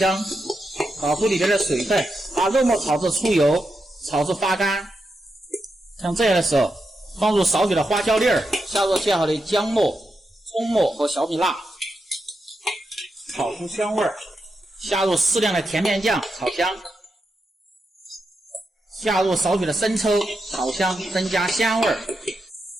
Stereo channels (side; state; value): both; normal; correlation 0.86